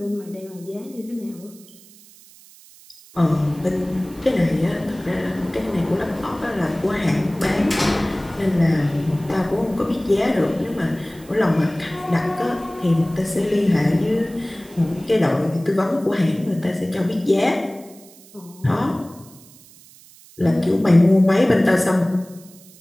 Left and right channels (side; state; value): right; noise; hiss, 23 dB below the sound